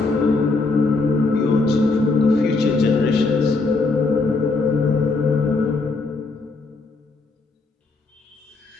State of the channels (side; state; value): right; quieter; 3.7 dB